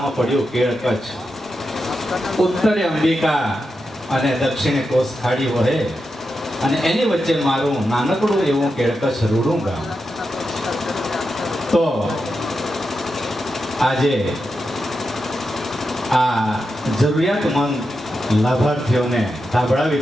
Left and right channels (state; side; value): normal; both; correlation 0.88